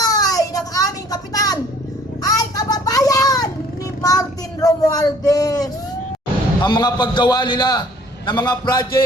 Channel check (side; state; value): both; normal; correlation 0.56